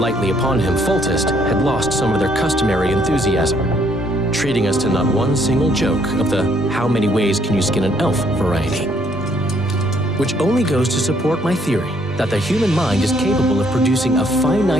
upon him. Foltest had lost some of their customary enthusiasm, treating us to not one single joke of the how many ways can you skin an elf variety. Which only goes to support my theory that the human mind is capable of producing a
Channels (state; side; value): normal; both; correlation 0.68